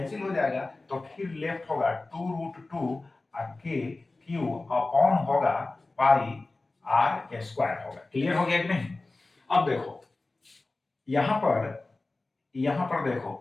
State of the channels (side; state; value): right; quieter; 3.2 dB